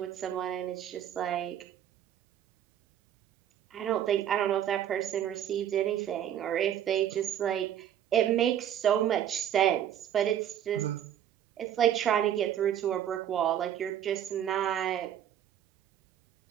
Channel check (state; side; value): quieter; left; 10.4 dB